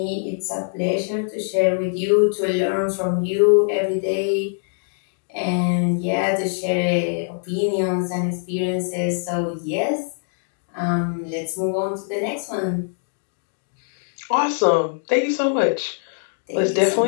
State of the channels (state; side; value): silent; right; digital silence